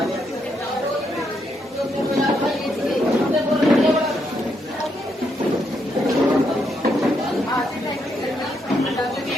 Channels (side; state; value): both; normal; correlation 0.78